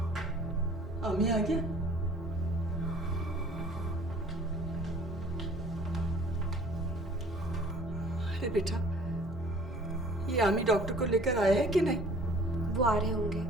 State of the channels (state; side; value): normal; both; correlation 0.51